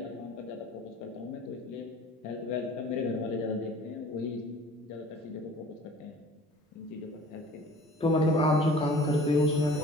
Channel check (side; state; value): both; normal; correlation 0.47